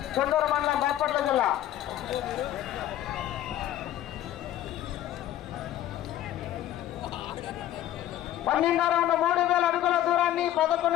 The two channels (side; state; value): right; quieter; 12.7 dB